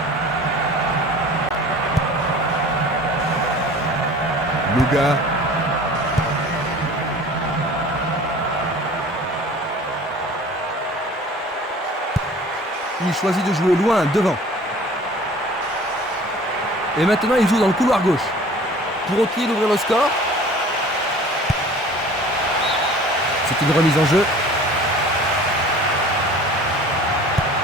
Luga. Il choisit de jouer loin, devant. Et maintenant, il joue dans le couloir gauche. Pour Oki d'ouvrir le score. C'est une remise en jeu.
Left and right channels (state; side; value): normal; both; correlation 0.46